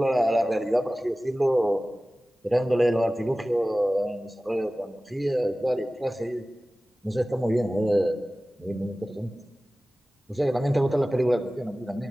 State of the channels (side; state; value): both; normal; correlation 0.97